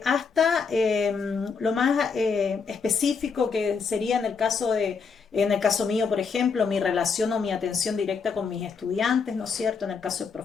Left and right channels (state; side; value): quieter; right; 5.5 dB